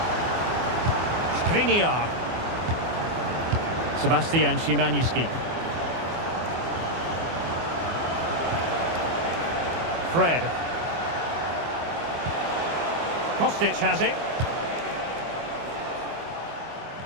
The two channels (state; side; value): late; left; 24 ms